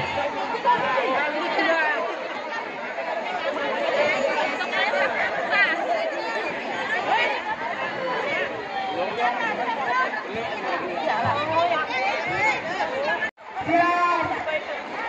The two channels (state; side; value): identical; both; correlation 1.00